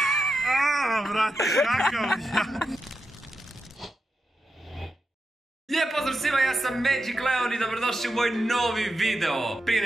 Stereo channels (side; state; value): both; normal; correlation 0.88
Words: Aaaa, brate, kakav ja. Lijep pozdrav svima, ja sam Magic Leon i dobrodošli u moj novi video. Prije